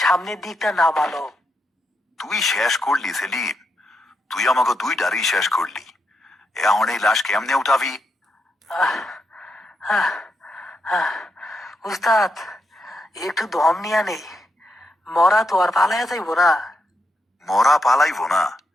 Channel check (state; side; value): normal; both; correlation 0.82